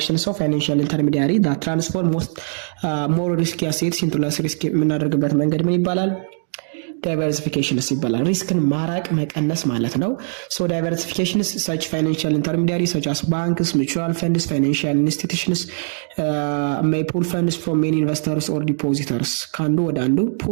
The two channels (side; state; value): left; silent; digital silence